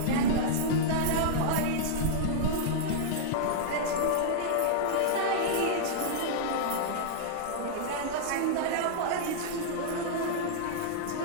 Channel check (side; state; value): both; different; correlation -0.02